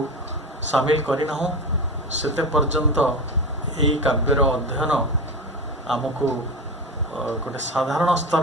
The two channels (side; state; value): both; normal; correlation 0.24